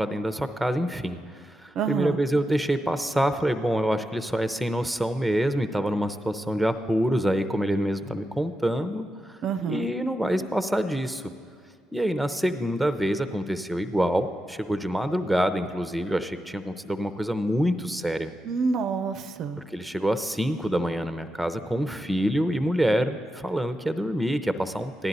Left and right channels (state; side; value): normal; both; correlation 0.88